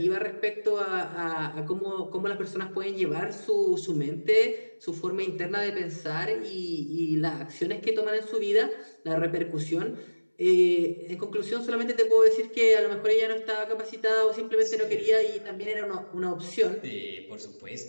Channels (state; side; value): inverted; both; correlation -1.00